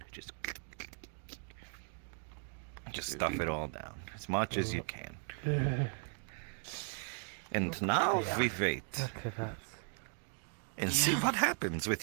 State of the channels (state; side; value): silent; left; 53 dB below the other